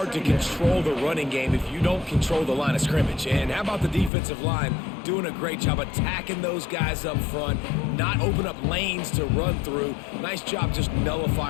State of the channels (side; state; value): right; drops out; at 4.1 s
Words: to control the running game if you don't control the line of scrimmage. And how about the defensive line doing a great job attacking those guys up front, not open up lanes to run through. Nice job just